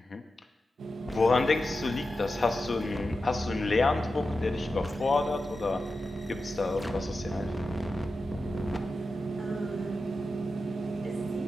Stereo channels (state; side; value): normal; both; correlation 0.91